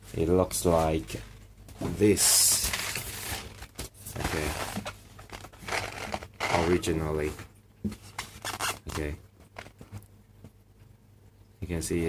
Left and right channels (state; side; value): identical; both; correlation 1.00